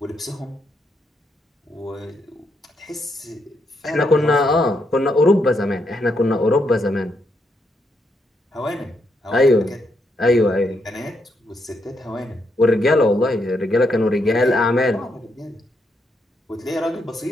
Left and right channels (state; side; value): normal; both; correlation 0.78